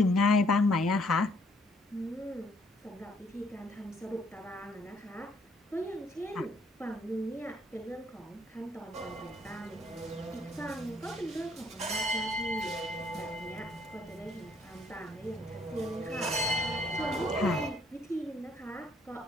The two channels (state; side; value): normal; both; correlation 0.66